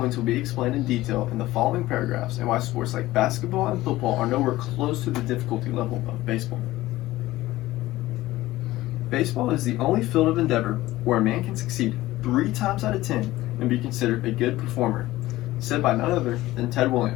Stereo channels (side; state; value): right; quieter; 17.0 dB